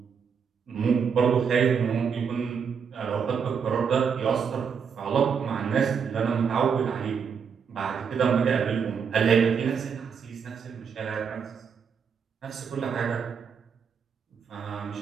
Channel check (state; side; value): quieter; left; 6.6 dB